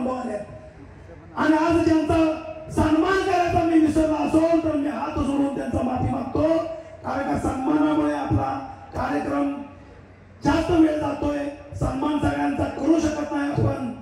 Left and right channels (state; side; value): identical; both; correlation 1.00